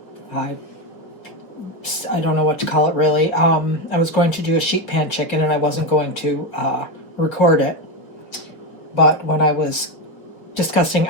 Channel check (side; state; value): right; late; 5.5 ms